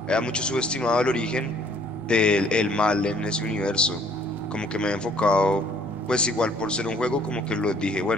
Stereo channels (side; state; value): left; noise; rumble, 24 dB below the sound